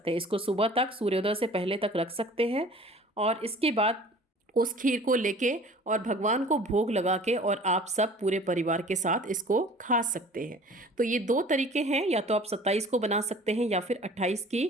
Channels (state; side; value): normal; both; correlation 0.47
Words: हैं। इसको सुबह तक सूर्योदय से पहले तक रख सकते हैं और इसके बाद उस खीर को लेके और भगवान को भोग लगा के और आप सब पूरे परिवार के साथ इसको खा सकते हैं। तो ये 2 तरीके हैं, या तो आप 27 को बना सकते हैं या फिर 28